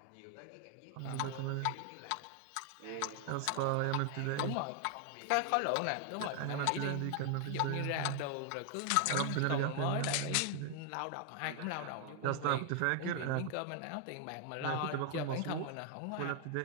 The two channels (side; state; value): both; different; correlation 0.00